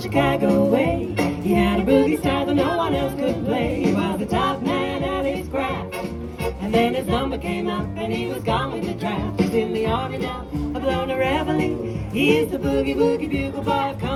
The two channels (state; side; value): identical; both; correlation 1.00